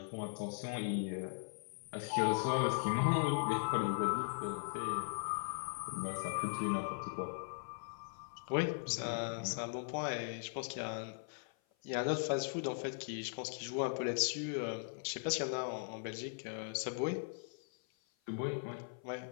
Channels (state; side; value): silent; right; 52 dB below the other